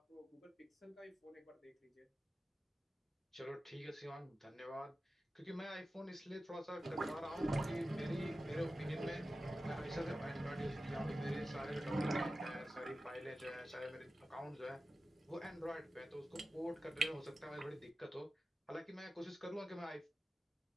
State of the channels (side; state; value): both; normal; correlation 0.94